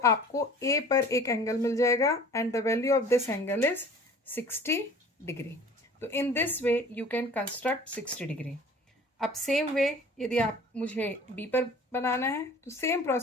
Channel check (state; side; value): normal; both; correlation 0.46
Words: ए पर एक एंगल मिल जाएगा and the value of this angle is 60 degree. तो in this way you can construct 60 degree. अब सेम वे यदि आप मुझे बी पर बनाना है तो सेम